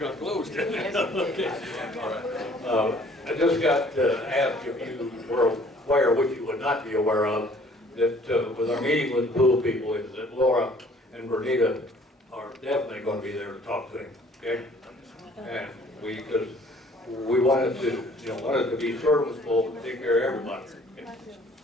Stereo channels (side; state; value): both; normal; correlation 0.56